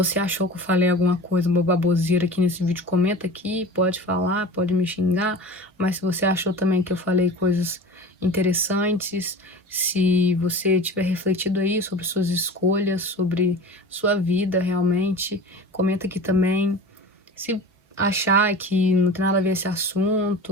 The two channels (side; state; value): both; normal; correlation 0.35